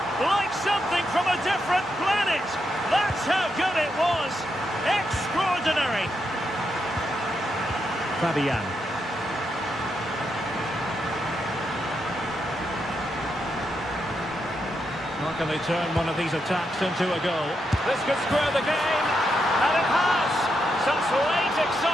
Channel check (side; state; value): both; normal; correlation 0.82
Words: Like something from a different planet. That's how good it was. Extraordinary. Fabian. How can they turn one of these attacks into a goal? This could square the game, and it has! Such late